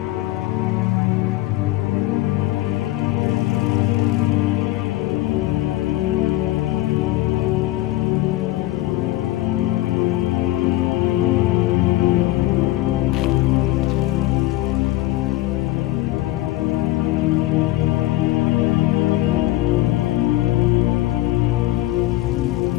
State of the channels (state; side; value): quieter; right; 16.7 dB